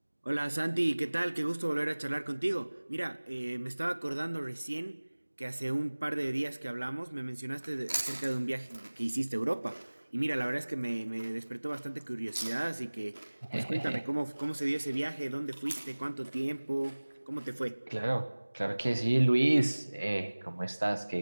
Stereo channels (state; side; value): inverted; both; correlation -1.00